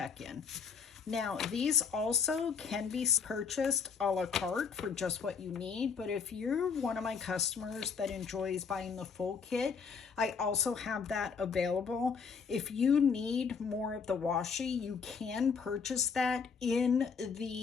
Now, these also can be purchased a la carte for just what you need, but if you're one of my customers that enjoys buying the full kit, I also have that available. If you need more of the washi, you can purchase that in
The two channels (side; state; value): right; quieter; 5.9 dB